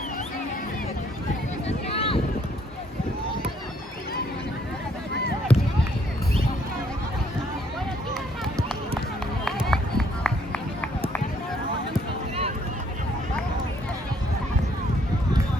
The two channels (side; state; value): both; normal; correlation 0.67